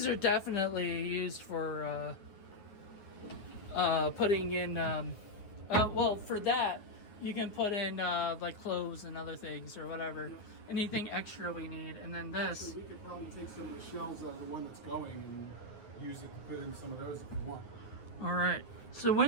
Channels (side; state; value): right; late; 9.5 ms